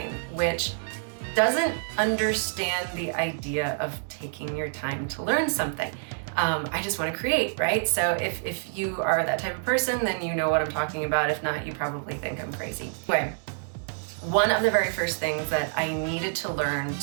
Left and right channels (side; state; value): left; silent; digital silence